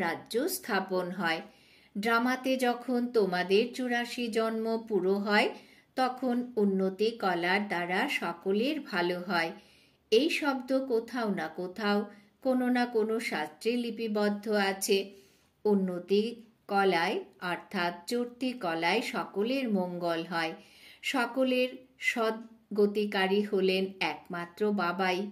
রাজ্য স্থাপন হয়। ড্রামাতে যখন তোমাদের 84 জন্ম পুরো হয়, তখন উন্নতি কলার দ্বারা সকলের ভালো হয়। এই শব্দ কোথাও না কোথাও কোনো না কোনো শাস্ত্রে লিপিবদ্ধ আছে। উন্নতি কলায় অর্থাৎ চর্তি কলায় সকলের মঙ্গল হয়। সকলের সদ্গতিকারী হলেন একমাত্র বাবাই,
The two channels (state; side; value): identical; both; correlation 1.00